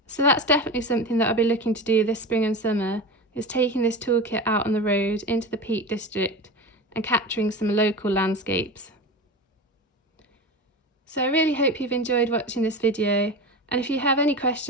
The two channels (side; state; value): both; normal; correlation 0.27